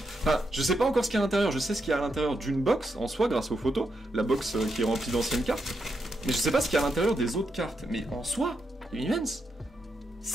enfin, je sais pas encore ce qu'il y a à l'intérieur, je sais ce qu'il y a à l'intérieur d'une box, en soi, grâce aux photos, la box qui est remplie d'anciennes cartes, mais je sais pas ce qu'il y a à l'intérieur des autres cartes, mais en soi, immense.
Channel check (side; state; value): both; normal; correlation 0.82